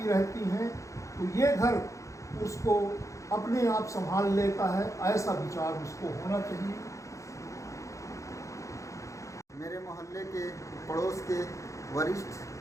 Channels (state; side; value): late; right; 0.15 ms